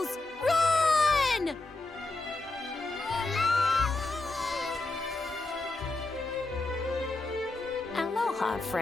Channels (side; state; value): right; quieter; 3.1 dB